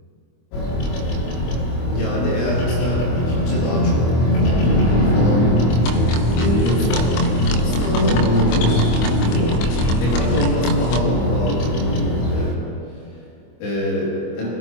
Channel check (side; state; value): right; late; 25 ms